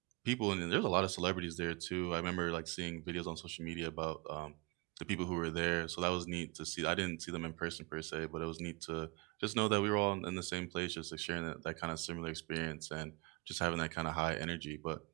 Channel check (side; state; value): left; quieter; 26.8 dB